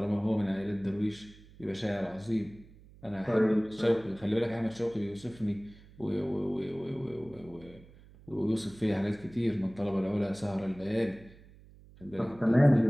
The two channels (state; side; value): noise; right; hum, 23 dB below the sound